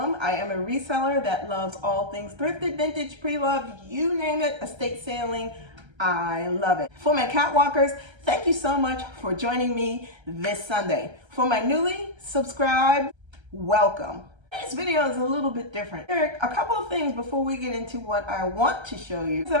I am a reseller that loves all things thrifted, vintage, pre-loved, you name it, estate sailing. I love it. For my catwalkers, thank you so much for joining me this Sunday. For my newly subscribed, welcome. This video is a little bit different. There are a couple of things before we get into what I want to show you that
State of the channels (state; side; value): late; left; 1.3 ms